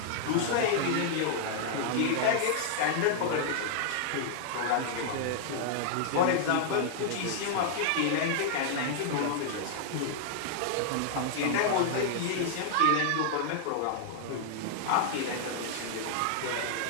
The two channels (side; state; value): both; different; correlation -0.01